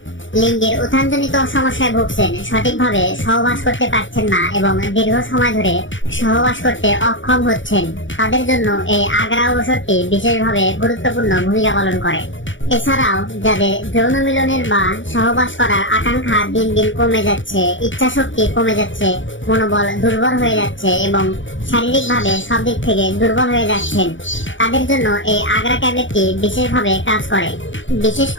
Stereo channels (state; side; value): late; right; 0.56 ms